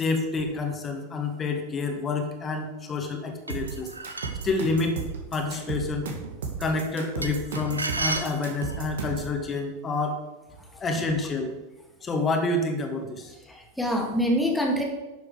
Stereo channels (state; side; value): normal; both; correlation 0.30